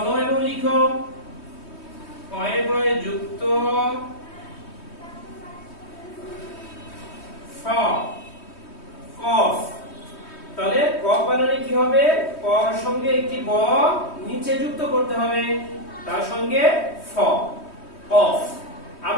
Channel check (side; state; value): right; late; 3.2 ms